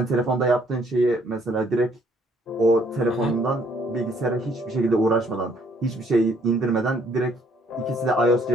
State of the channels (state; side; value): normal; both; correlation 0.64